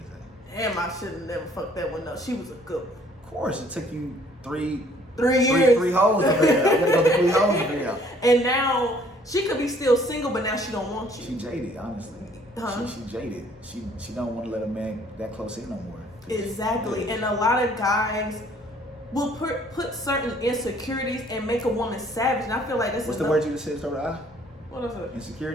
Damn, I should have never fucked that one up. She was a good one. Of course, it took you 3 years. Three hoes to figure out. I gotta go to 3 hoes to figure out. And now she could be still single, but now she don't want you. She jaded, honestly. She jaded. She don't want to let a man that close in no more. Exactly. And a lot of guys will put certain insecurities and make a woman savage. And I feel like this What's is the word you just said? Start with I? What is it?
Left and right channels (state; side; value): normal; both; correlation 0.59